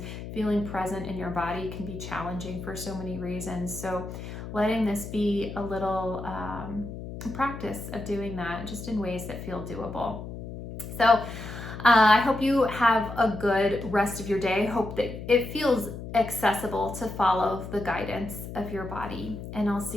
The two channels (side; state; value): left; noise; hum, 9 dB below the sound